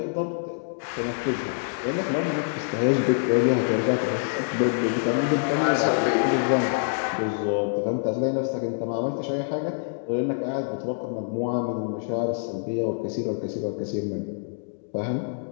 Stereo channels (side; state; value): right; silent; digital silence